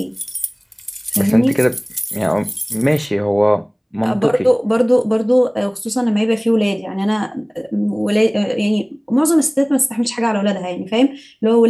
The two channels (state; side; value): identical; both; correlation 1.00